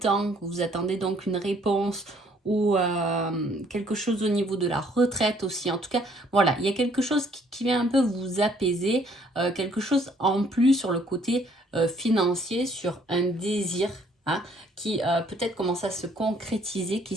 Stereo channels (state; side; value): normal; both; correlation 0.63